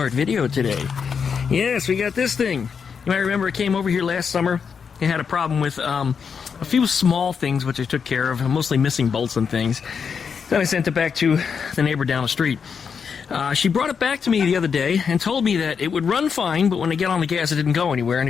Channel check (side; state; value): right; quieter; 6.3 dB